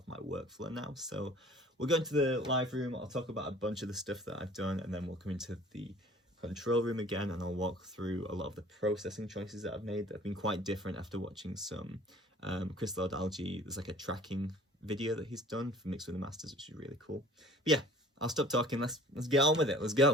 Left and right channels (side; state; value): both; normal; correlation 0.49